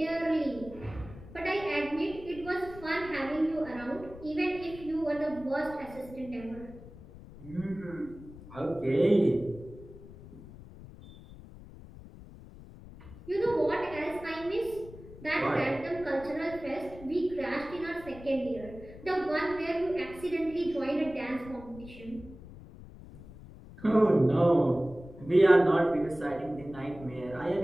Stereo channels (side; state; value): left; noise; rumble, 17 dB below the sound